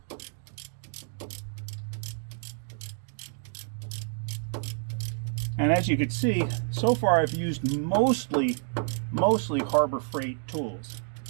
And as you can see, so far I've used mostly Harbor Freight tools.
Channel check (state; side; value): silent; left; 59 dB below the other